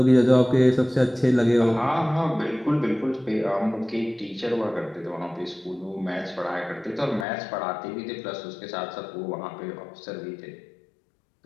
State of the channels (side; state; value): right; drops out; at 7.2 s